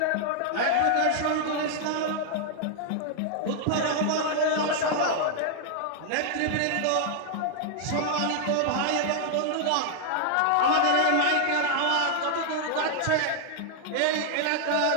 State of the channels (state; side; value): different; both; correlation -0.01